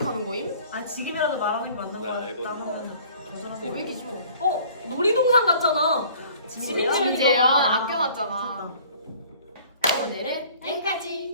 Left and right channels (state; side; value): inverted; both; correlation -0.52